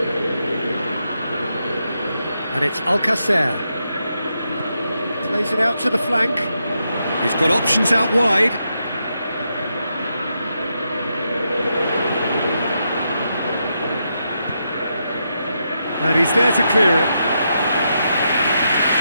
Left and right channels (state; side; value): inverted; both; correlation -0.83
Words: And it's Alcacer. Plays it out to the flank. He's got options out wide. And he's there to clear it.